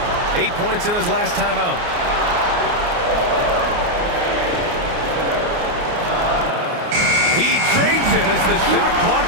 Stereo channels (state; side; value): late; left; 29 ms